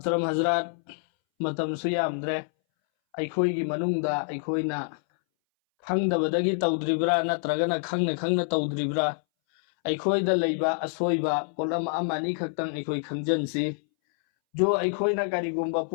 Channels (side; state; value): right; silent; 60 dB below the other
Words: حضرات متم سيامدره أيخويगी manungda أيخوينا खंगदबदगी तौद्रिब्रा नत्रगना खंगना खंगना तौद्रिब्रा अखोइदा लैबा असोइबा पोलम अमानी खक्तंग अखोइ खंजनसी जो अखोइना करिगुम्बा